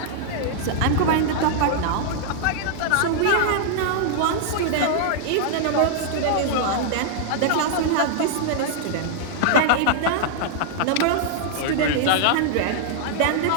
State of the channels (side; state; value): both; different; correlation -0.01